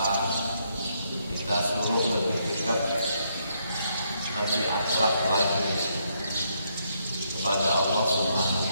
kita suruh lebih dekat, lebih akrab lagi kepada Allah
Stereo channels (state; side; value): inverted; both; correlation -0.75